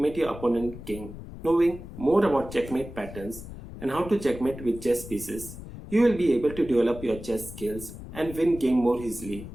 your opponent king. Knowing more about checkmate patterns and how to checkmate with chess pieces, you will be able to develop your chess skills and win game more easily.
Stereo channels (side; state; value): left; noise; rumble, 13 dB below the sound